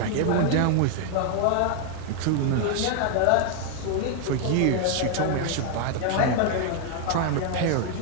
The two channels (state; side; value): different; both; correlation 0.00